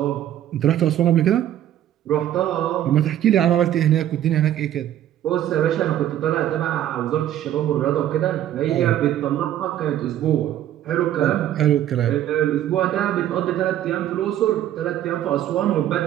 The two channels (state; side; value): quieter; left; 11.8 dB